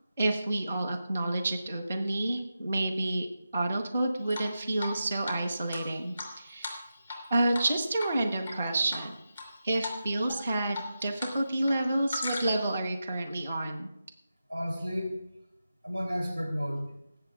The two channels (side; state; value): both; inverted; correlation -0.90